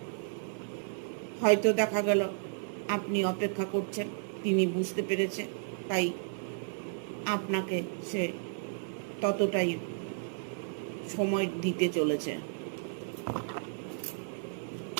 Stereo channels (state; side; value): silent; left; digital silence